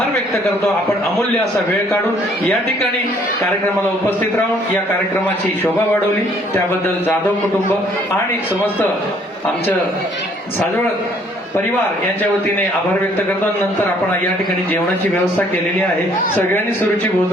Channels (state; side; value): normal; both; correlation 0.62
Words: व्यक्त करतो. आपण अमूल्य असा वेळ काढून या ठिकाणी कार्यक्रमाला उपस्थित राहून या कार्यक्रमाची शोभा वाढवली त्याबद्दल जाधव कुटुंब आणि समस्त आमचं साजवळ परिवार यांच्या वतीने आभार व्यक्त करतो. नंतर आपण या ठिकाणी जेवणाची व्यवस्था केलेली आहे. सगळ्यांनी सुरुची